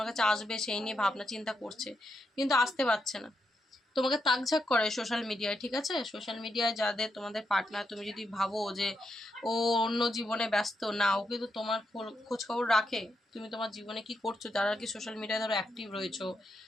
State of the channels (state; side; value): normal; both; correlation 0.83